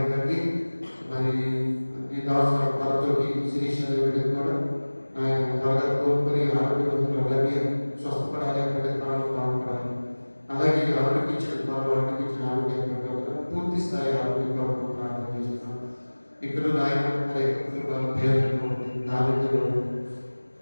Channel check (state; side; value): inverted; both; correlation -1.00